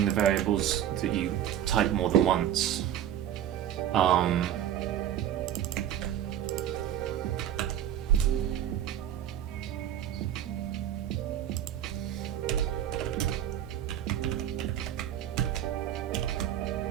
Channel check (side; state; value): left; quieter; 10.8 dB